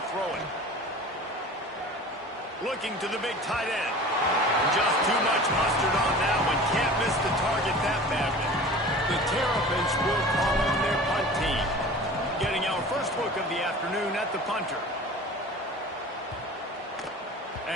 throw it. Looking to the big tight end. Just too much mustard on that one. Can't miss the target that badly. The Terrapins will call on their punt team. Getting our first look of the afternoon at the punter.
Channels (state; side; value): normal; both; correlation 0.40